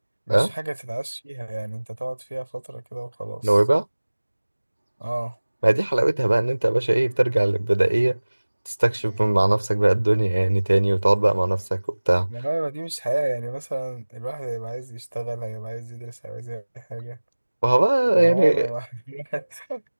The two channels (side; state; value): both; inverted; correlation -1.00